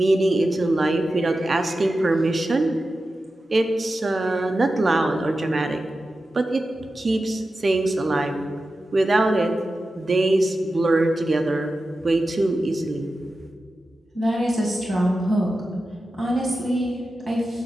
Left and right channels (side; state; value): both; normal; correlation 0.92